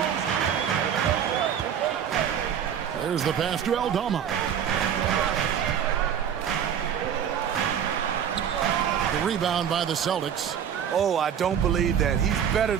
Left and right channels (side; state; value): left; quieter; 8.6 dB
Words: There's the pass to Aldama. The rebound by the Celtics. Oh, I don't believe that. He's better